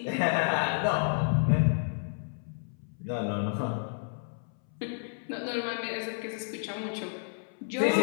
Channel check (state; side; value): silent; right; 57 dB below the other